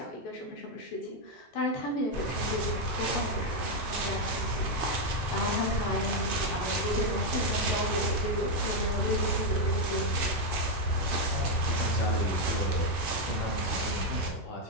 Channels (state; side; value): late; right; 2.7 ms